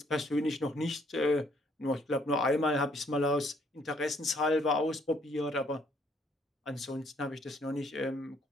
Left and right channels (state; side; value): normal; both; correlation 0.66